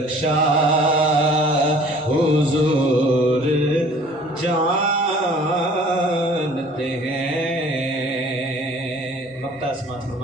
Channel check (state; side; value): normal; both; correlation 0.51